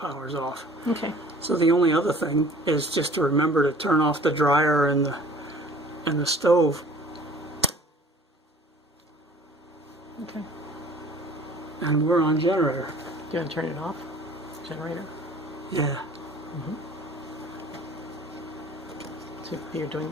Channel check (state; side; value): normal; both; correlation 0.49